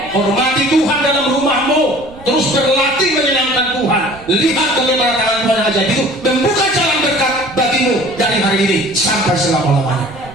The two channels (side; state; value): right; noise; rumble, 22 dB below the sound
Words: Hormati Tuhan dalam rumahmu, terus berlatih menyenangkan Tuhan. Lihat bagaimana tangan Tuhan yang ajaib itu membuka jalan berkat bagimu dari hari ini sampai selama-lamanya.